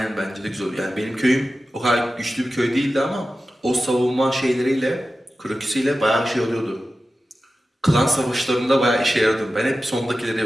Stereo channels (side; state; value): both; normal; correlation 0.94